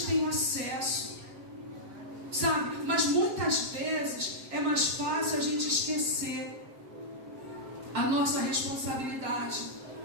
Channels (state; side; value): late; left; 7.6 ms